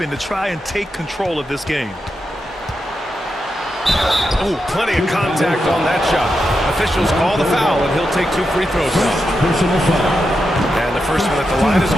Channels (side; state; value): both; normal; correlation 0.87